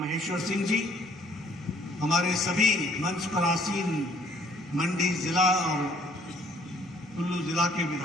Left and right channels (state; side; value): normal; both; correlation 0.61